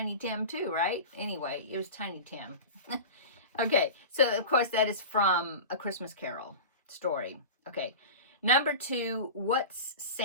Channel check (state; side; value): inverted; both; correlation -0.30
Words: Tim too, right? Anyway, it was Tiny Tim. Okay, so of course that is from A Christmas Carol story. Okay, number 2, what's